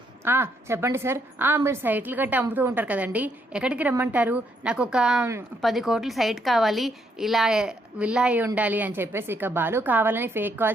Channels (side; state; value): both; normal; correlation 0.73